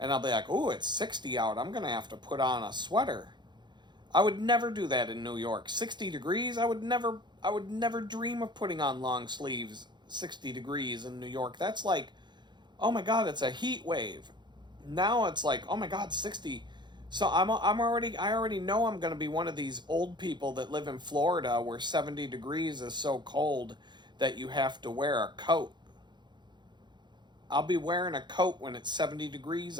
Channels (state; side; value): late; left; 0.21 ms